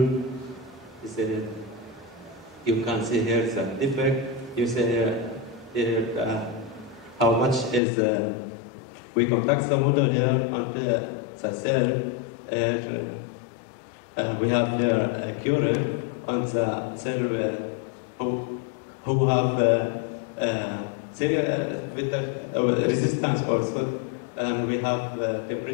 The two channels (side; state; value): right; drops out; at 7.8 s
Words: You can see here the defect. You see here how much is we contact the model here and the cell. We have here a current on the cell who have resistance also, and we have